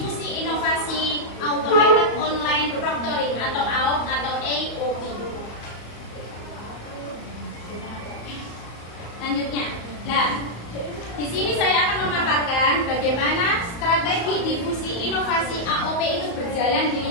inovasi Automated Online Proctoring atau AOP atau AOP. Selanjutnya, di sini saya akan memaparkan bagaimana strategi difusi inovasi AOP itu berjalan di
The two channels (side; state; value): right; late; 34 ms